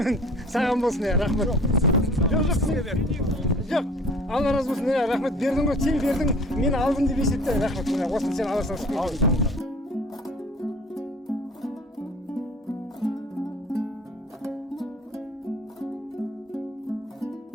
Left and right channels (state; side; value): normal; both; correlation 0.47